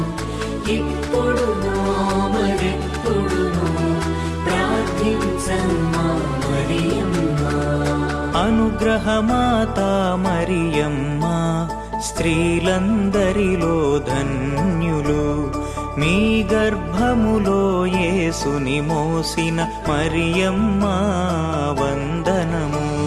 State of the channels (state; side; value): identical; both; correlation 1.00